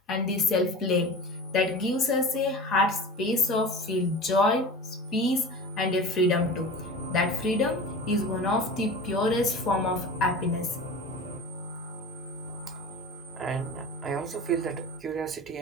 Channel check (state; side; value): normal; both; correlation 0.34